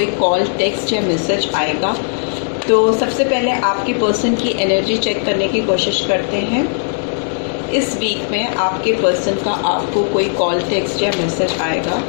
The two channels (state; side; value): silent; right; digital silence